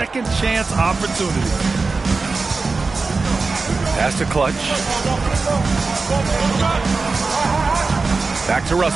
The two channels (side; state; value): left; quieter; 4.0 dB